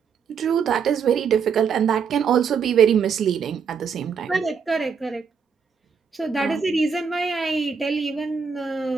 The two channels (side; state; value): left; quieter; 6.3 dB